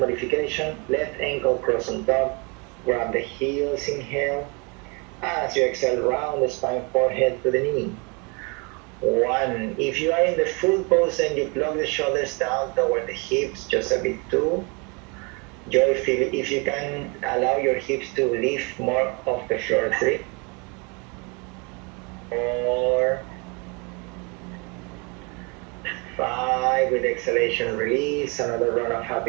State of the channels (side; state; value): left; quieter; 31.2 dB